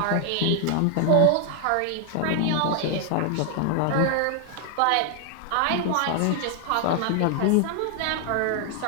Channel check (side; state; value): both; different; correlation 0.00